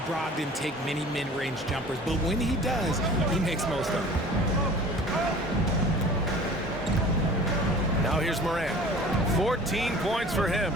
Brogdon take many mid-range jumpers, but when he does, he makes most of them. Now here's Morant. 14 points for him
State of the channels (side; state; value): both; normal; correlation 0.44